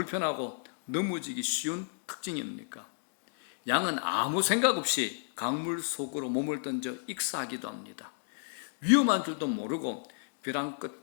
넘어지기 쉬운 특징입니까? 양은 아무 생각 없이 강물 속으로 몸을 던져 익사하기도 합니다. 위험한 줄도 모르고 벼랑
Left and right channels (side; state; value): right; silent; digital silence